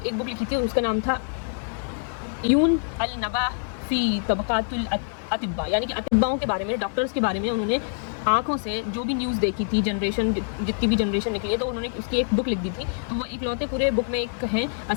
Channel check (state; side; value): silent; right; digital silence